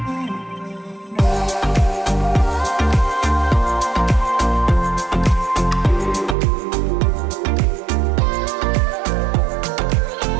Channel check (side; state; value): left; drops out; at 6.4 s